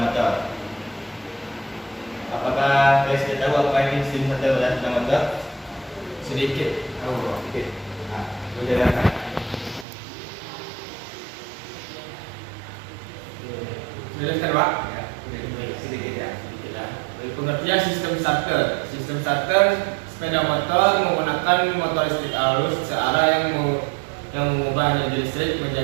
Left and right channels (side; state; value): left; drops out; at 9.9 s